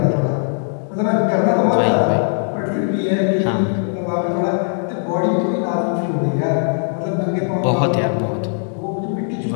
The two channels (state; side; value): silent; right; 63 dB below the other